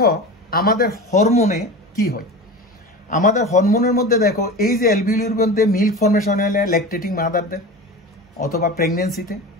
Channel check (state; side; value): normal; both; correlation 0.31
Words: আমাদের হরমোনে কি হয়। আমাদের হরমোনের মধ্যে দেখো এই যে অ্যালভিউলির মধ্যে মিল্ক ফর্মেশন হলে ল্যাকটেটিং মাদারদের অথবা প্রেগনেন্সিতে